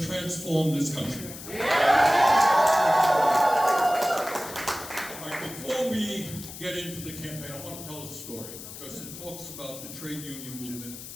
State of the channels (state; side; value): noise; left; hiss, 12 dB below the sound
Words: transform this country. All right, before we get into the campaign, I want to tell a story, because it talks about the trade union movement